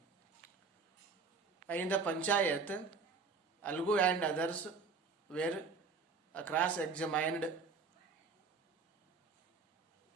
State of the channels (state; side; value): quieter; left; 4.8 dB